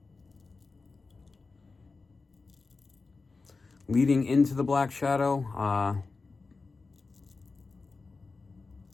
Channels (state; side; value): quieter; right; 4.0 dB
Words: Leading into the black shadow,